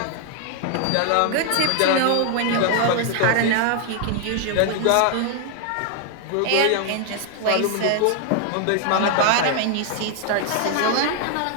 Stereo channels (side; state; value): both; different; correlation 0.00